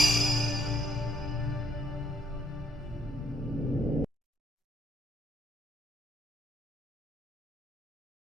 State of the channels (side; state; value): both; normal; correlation 0.69